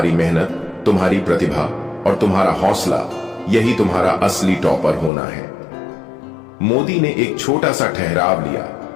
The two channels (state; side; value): drops out; right; at 5.1 s